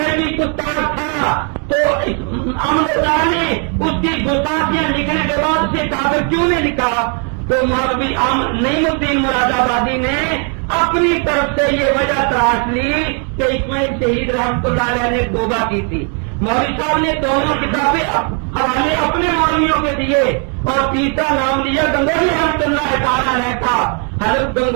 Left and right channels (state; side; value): quieter; left; 39.9 dB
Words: گستاخ تھا تو احمد رضا نے اس کی گستاخیاں لکھنے کے بعد اسے کافر کیوں نہیں لکھا؟ تو مولوی نعیم الدین مراد آبادی نے اپنی طرف سے یہ وجہ تراش لی کہ اسماعیل شہید رحمۃ اللہ علیہ نے توبہ کی تھی۔ مولوی صاحب نے دونوں کتابیں حوالے اپنے مولویوں کے دیے اور تیسرا نام لیا گنگوہی رحمۃ اللہ تعالی علیہ کا۔ حضرت